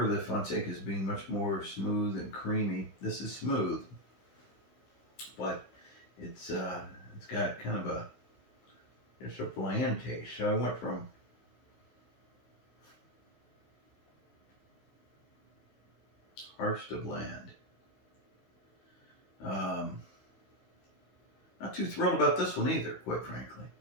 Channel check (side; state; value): right; late; 15 ms